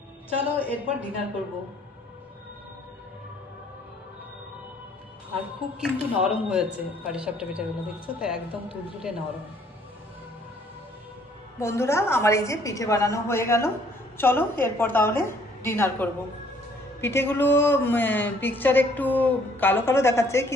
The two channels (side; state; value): both; normal; correlation 0.61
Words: চলো এরপর ডিনার করব। আর খুব কিন্তু নরম হয়েছে পাটিসাপটা পিঠাগুলো, দেখছো তো একদম তুলতুলে নরম। বন্ধুরা আমার এই যে পিঠে বানানো হয়ে গেল, চলো এরপর তাহলে ডিনার করব। পিঠেগুলো পিকচার একটু কালো কালো দেখাচ্ছে,